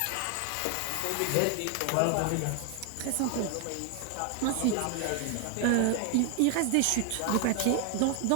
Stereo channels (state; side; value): different; both; correlation 0.00